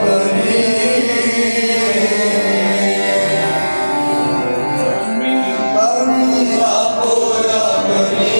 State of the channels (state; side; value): inverted; both; correlation -1.00